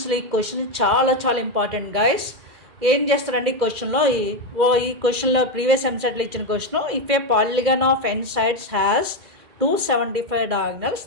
ఈ క్వశ్చన్ చాలా చాలా ఇంపార్టెంట్ గైస్. ఏం చేస్తారండి ఈ క్వశ్చన్లో, ఈ క్వశ్చన్లో ప్రీవియస్ ఎంసెట్లో ఇచ్చిన question, if a polygon of n sides has 275 diagonals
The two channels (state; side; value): late; left; 2.1 ms